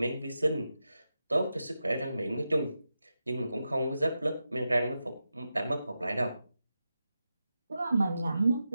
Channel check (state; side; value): inverted; both; correlation -0.90